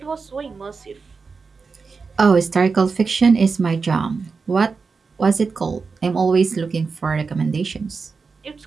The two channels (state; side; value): quieter; left; 4.8 dB